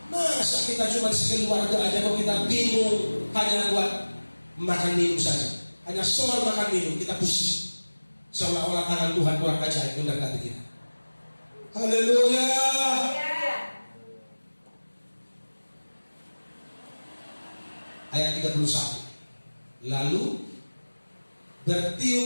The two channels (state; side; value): inverted; both; correlation -1.00